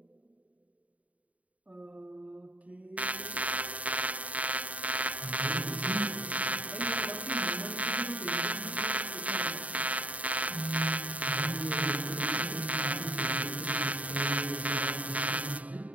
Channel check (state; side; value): late; left; 0.070 ms